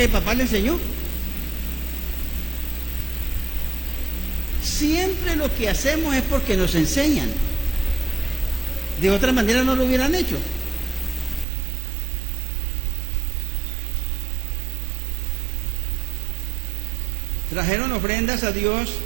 el papá le enseñó? Siempre lo que hacemos es porque nos enseñan. De otra manera no lo hubieran hecho. Trajeron ofrendas a Dios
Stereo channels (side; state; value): left; drops out; at 11.5 s